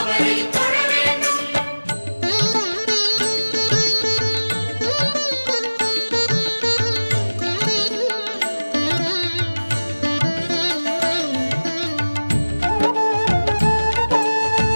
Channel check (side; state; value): both; inverted; correlation -1.00